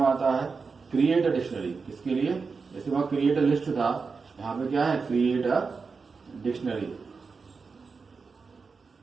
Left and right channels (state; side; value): quieter; left; 4.8 dB